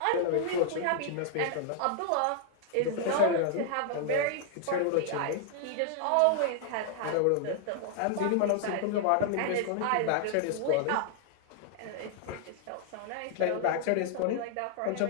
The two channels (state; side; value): different; both; correlation 0.00